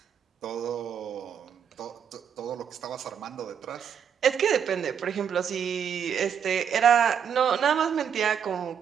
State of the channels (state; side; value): quieter; left; 7.9 dB